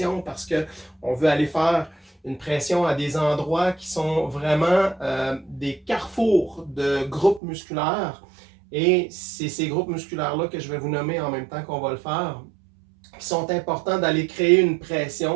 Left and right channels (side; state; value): left; drops out; at 7.4 s